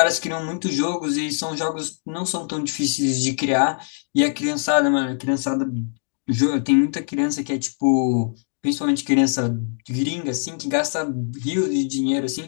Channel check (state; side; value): silent; right; digital silence